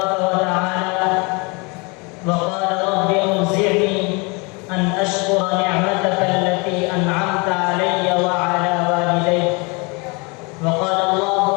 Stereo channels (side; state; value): right; quieter; 29.5 dB